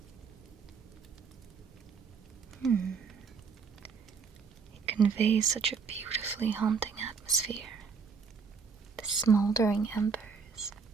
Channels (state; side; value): quieter; left; 5.5 dB